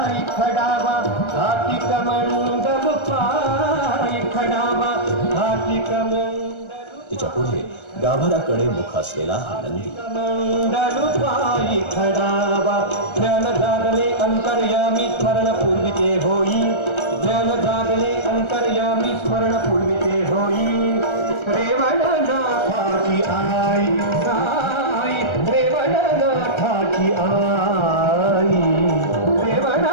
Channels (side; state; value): right; late; 1.3 ms